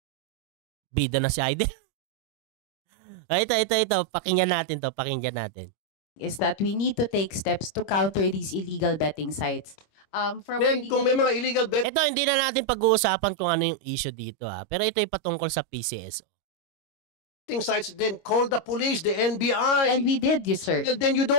Bida na si Aiden. Ito. Pakinggan natin. Is that we need to take steps to counter these illegal betting sites. Kung may mga illegal betting Ito, hindi na natin pag-uusapan kung ano yung issue dito Pero ito ay patungkol sa PCSO. sites, then call the police, the NBI. And we did, yes, sir. Well, then you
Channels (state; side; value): late; right; 26 ms